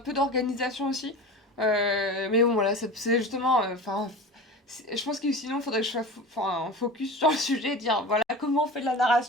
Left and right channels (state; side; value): normal; both; correlation 0.32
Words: d'organisation aussi, mais bon, voilà, c'est justement, enfin, je pense que sinon, il faudrait que je sois enfin, focus sur le sujet et dire, voilà, comment on fait de la